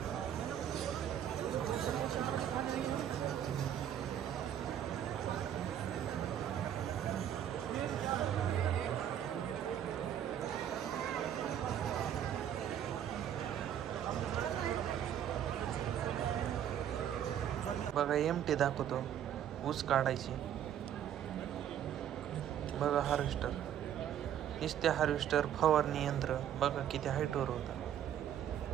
बघा MT दाखवतो, ऊस काढायची. बघा हार्वेस्टर, नुसते हार्वेस्टर, फवारणी यंत्र बघा किती हाईटवर होता.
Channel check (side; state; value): left; quieter; 10.1 dB